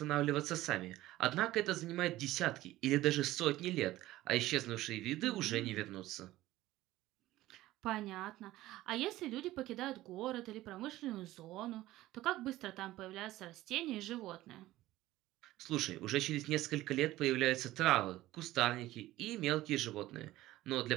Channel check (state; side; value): quieter; left; 16.3 dB